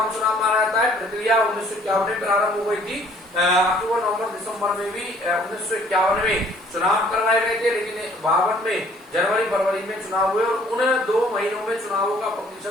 चुनाव माना जाता है। प्रक्रिया 1951 में प्रारंभ हो गई थी। अक्टूबर, नवंबर, दिसंबर में भी 1951 में चुनाव करवाए गए थे, लेकिन 52 में जनवरी, फरवरी में चुनाव हुए और उन 2 महीनों में चुनावों का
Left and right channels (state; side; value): noise; right; hiss, 29 dB below the sound